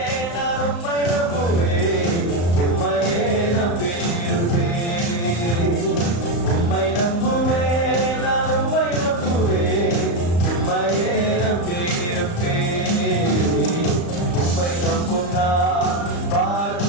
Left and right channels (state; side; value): late; right; 35 ms